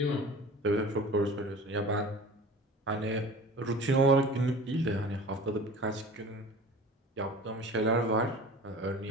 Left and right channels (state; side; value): normal; both; correlation 0.40